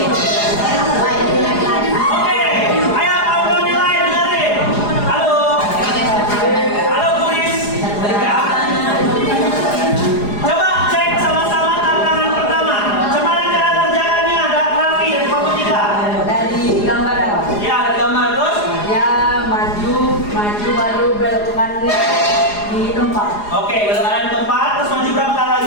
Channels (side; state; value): right; late; 4.8 ms